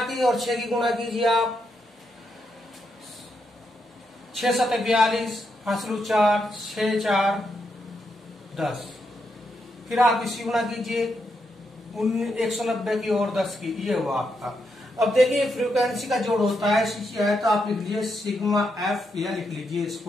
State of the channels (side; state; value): both; normal; correlation 0.81